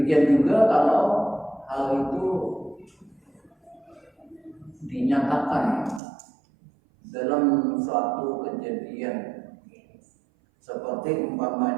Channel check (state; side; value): drops out; left; at 6.0 s